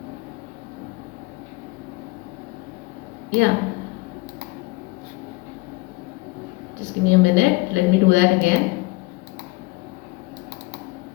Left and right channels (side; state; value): right; quieter; 23.0 dB